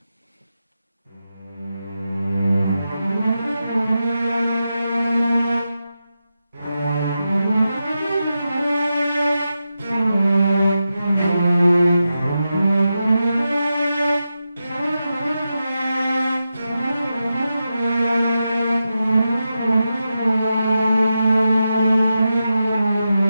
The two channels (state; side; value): inverted; both; correlation -0.89